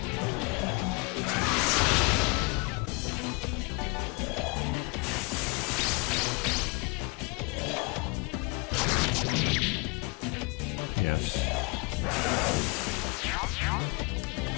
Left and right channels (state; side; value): quieter; right; 29.1 dB